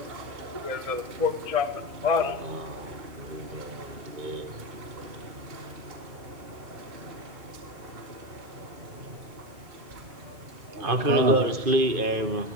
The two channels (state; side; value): late; left; 2.2 ms